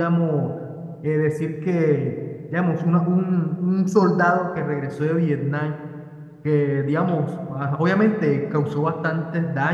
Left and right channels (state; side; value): identical; both; correlation 1.00